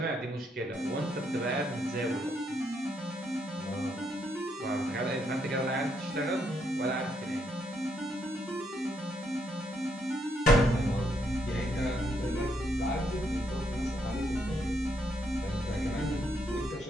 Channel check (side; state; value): both; normal; correlation 0.75